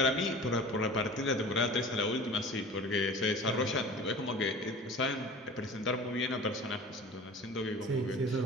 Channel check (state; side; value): normal; both; correlation 0.40